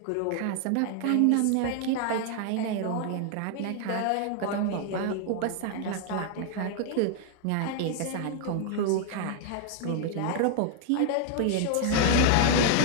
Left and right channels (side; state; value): both; different; correlation 0.00